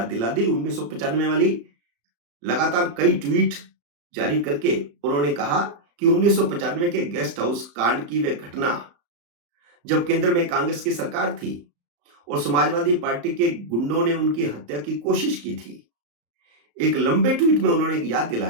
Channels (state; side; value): late; left; 35 ms